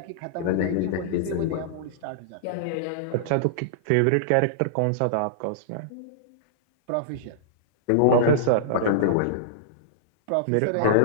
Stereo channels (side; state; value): both; different; correlation -0.02